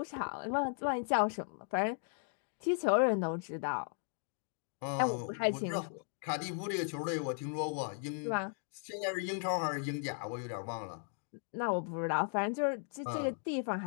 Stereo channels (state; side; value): silent; right; 53 dB below the other